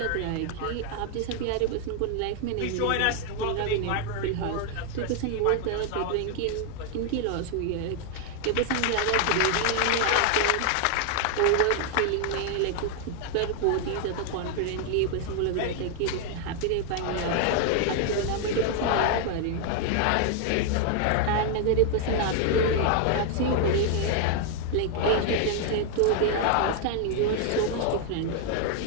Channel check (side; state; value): both; different; correlation 0.00